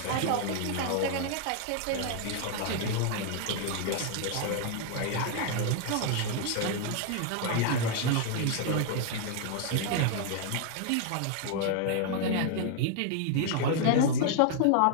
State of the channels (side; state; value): both; different; correlation 0.00